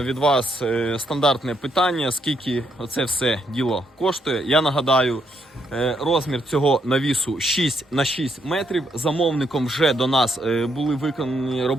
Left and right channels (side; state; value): both; normal; correlation 0.75